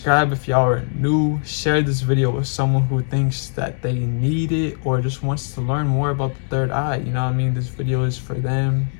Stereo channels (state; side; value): silent; right; digital silence